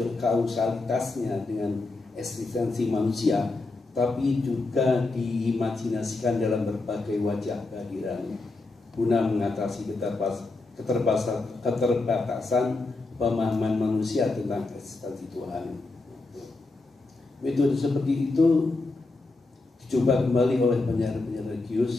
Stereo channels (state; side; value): quieter; right; 3.3 dB